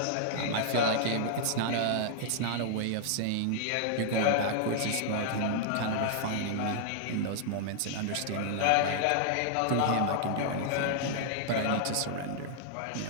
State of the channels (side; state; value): both; different; correlation -0.01